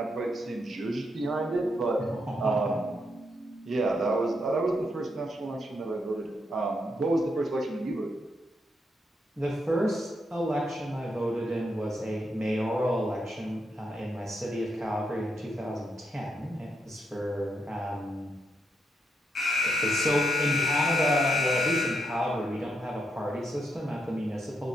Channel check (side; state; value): both; normal; correlation 0.80